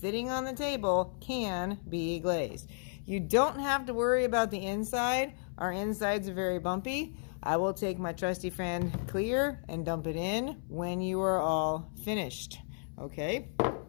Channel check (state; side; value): silent; right; 56 dB below the other